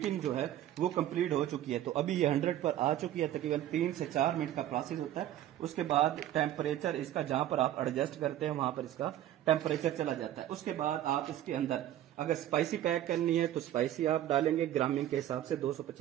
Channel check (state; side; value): quieter; left; 12.5 dB